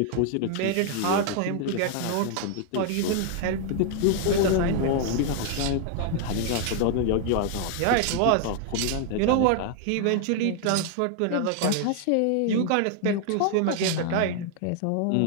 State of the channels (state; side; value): different; both; correlation 0.00